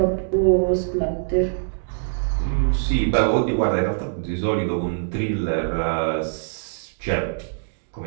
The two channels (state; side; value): silent; left; digital silence